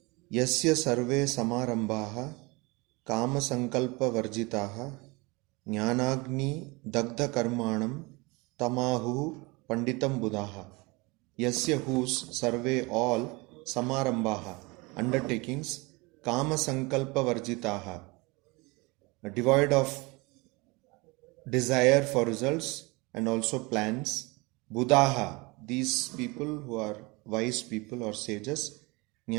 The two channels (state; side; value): quieter; left; 25.9 dB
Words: Yasya sarve samarambhaha kama sankalpa varjitaha jnanagni dagdha karmanam tamahu panditam buddhaha. Yasya whose survey all samarambhaha undertakings kama sankalpa varjitaha devoid of desire for results and also plans. Buddhaha, these people who are wise people or sages,